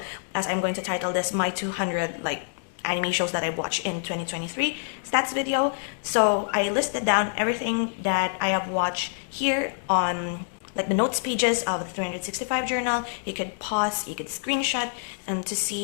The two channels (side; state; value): right; silent; digital silence